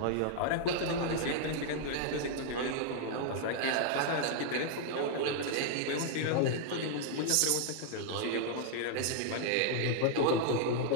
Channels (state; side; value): different; both; correlation -0.01